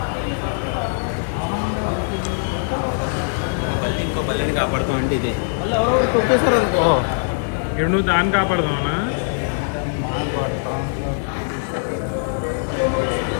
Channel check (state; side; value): silent; right; digital silence